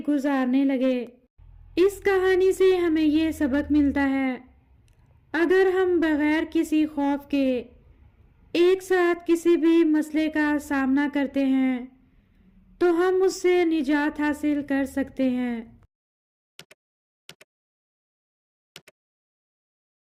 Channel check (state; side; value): identical; both; correlation 1.00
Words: گزارنے لگے۔ اس کہانی سے ہمیں یہ سبق ملتا ہے، اگر ہم بغیر کسی خوف کے ایک ساتھ کسی بھی مسئلے کا سامنا کرتے ہیں تو ہم اس سے نجات حاصل کر سکتے ہیں۔